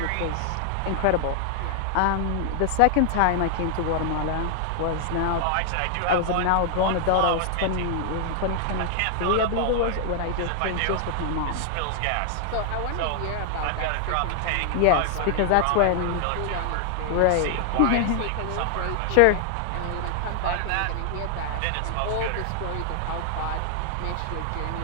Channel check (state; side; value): different; both; correlation 0.00